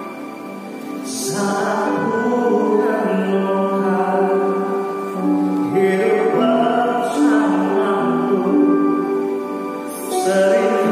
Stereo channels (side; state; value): both; identical; correlation 1.00